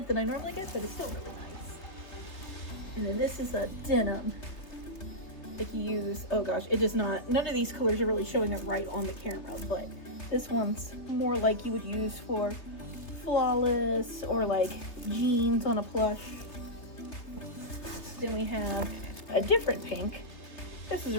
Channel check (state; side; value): late; right; 3.4 ms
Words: that I normally get, but it's still really nice. And then this is a denim. If you use, oh gosh, it does not, none of these colors are really showing up right on the camera, but this one's more like you would use for Flawless or like jeans on a plush. Then we have a different pink. This is